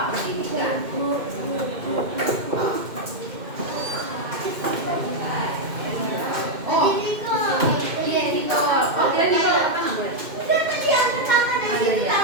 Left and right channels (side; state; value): left; late; 2.1 ms